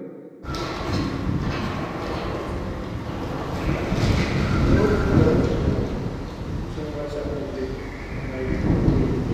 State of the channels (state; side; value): identical; both; correlation 1.00